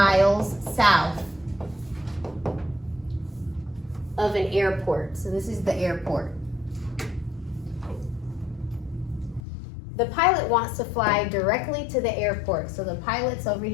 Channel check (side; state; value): right; drops out; at 9.4 s